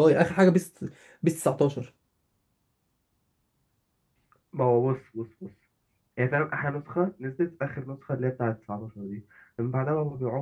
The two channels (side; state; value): both; identical; correlation 1.00